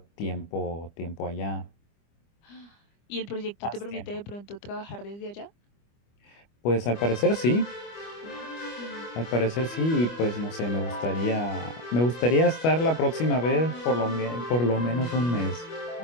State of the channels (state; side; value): late; right; 25 ms